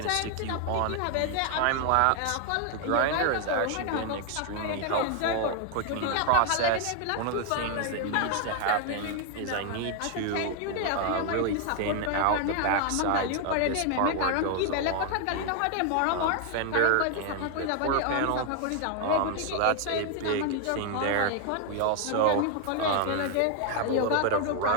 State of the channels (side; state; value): both; different; correlation 0.00